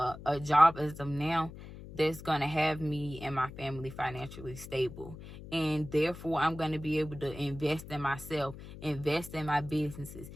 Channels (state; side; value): noise; left; hum, 14 dB below the sound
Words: job as of now, that's going to have me and my family financially stable. And therefore, I'm going to be able to invest in myself, invest in my businesses,